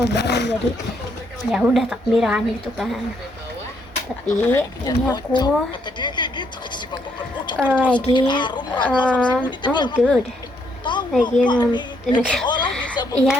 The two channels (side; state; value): both; normal; correlation 0.73